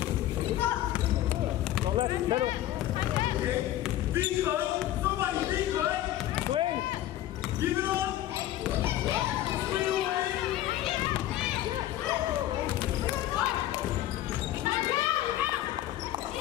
Go left, middle. Be good. Somebody be good. Swing. Give it up. Swing away.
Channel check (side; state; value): right; quieter; 13.6 dB